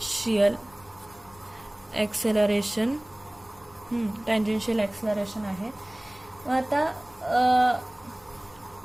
acceleration, tangential acceleration आहे. आता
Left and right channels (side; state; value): left; noise; rumble, 27 dB below the sound